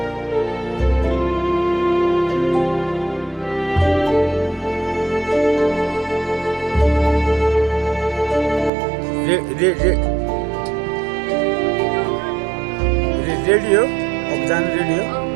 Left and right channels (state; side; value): drops out; left; at 8.7 s